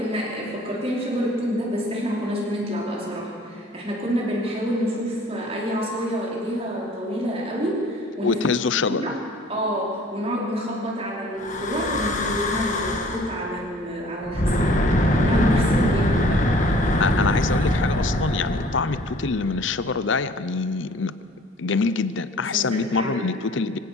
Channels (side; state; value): both; normal; correlation 0.51